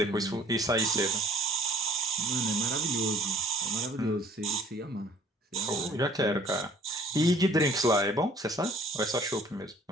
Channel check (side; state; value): both; normal; correlation 0.54